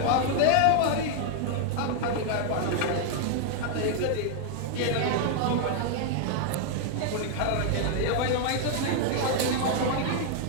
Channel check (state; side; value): different; both; correlation 0.00